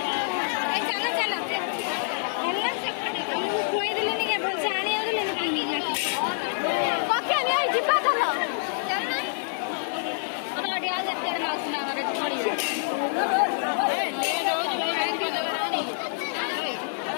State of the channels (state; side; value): silent; right; digital silence